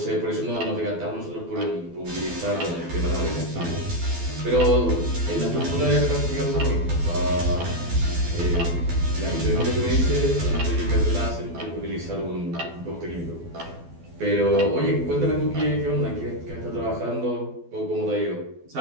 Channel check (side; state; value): left; late; 12 ms